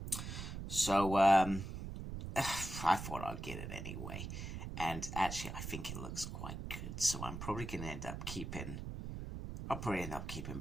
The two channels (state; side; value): noise; right; rumble, 7 dB below the sound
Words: So I thought I'd get it anyway, and actually I think it looks quite good, so I'm probably gonna end up keeping